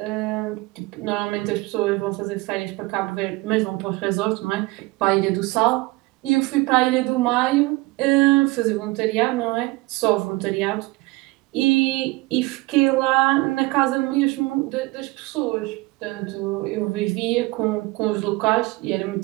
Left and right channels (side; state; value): left; quieter; 22.3 dB